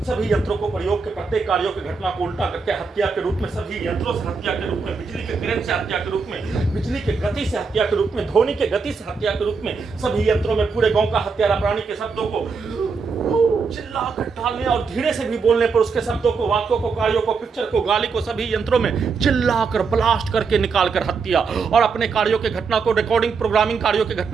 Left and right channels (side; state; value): left; quieter; 5.0 dB